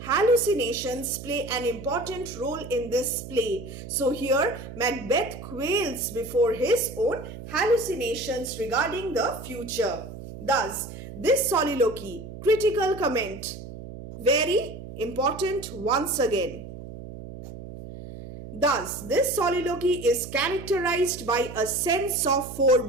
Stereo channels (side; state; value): right; noise; hum, 12 dB below the sound